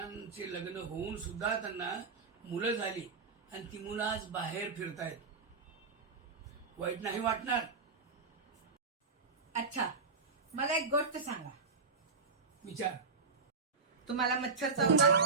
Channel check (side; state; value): left; quieter; 4.6 dB